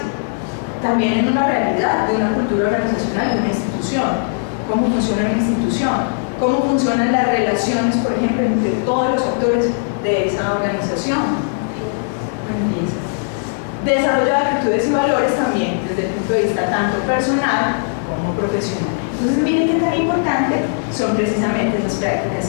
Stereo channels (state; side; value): silent; right; digital silence